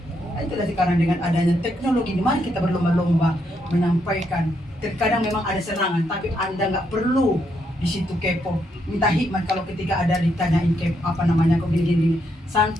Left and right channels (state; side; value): normal; both; correlation 0.78